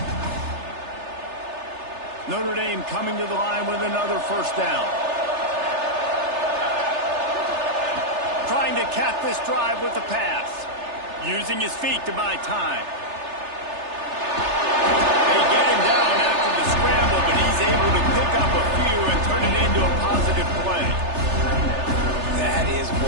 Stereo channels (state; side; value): late; left; 3.3 ms